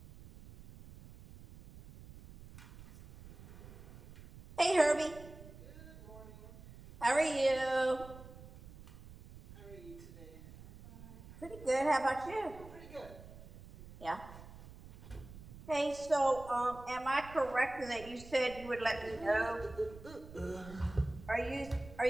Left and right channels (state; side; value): noise; right; rumble, 17 dB below the sound